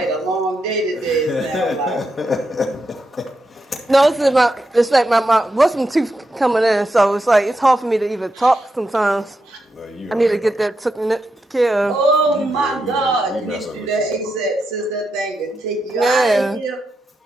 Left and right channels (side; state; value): both; normal; correlation 0.85